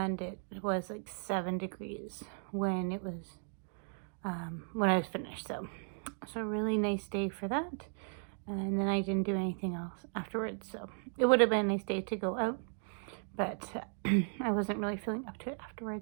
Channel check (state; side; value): silent; left; 54 dB below the other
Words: it was like 7 degrees when it was when I was finished. So a really nice day for that. And then I didn't do anything else afterwards. So it would have been a nice day to go out, but I wasn't really feeling up to it